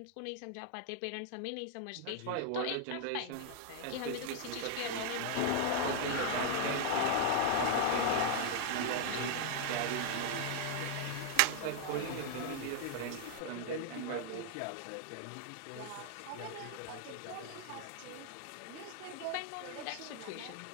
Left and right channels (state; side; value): different; both; correlation 0.00